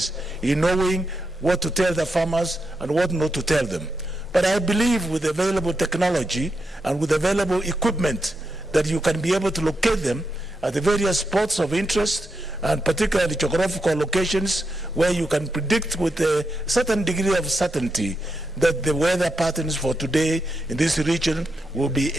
in knowing what to tell the farmers and what not to tell them. But I believe with available technology and with available equipment that you can be able to locate them at the various spots of interest, and particularly geographical locations where you can predict with a certain degree of certainty that the weather patterns for today in this region will be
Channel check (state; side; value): normal; both; correlation 0.85